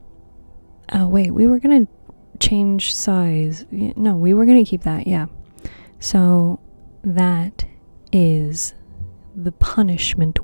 wait, we were gonna change size. No, we were gonna keep that, yeah. So, that is the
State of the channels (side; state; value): both; inverted; correlation -1.00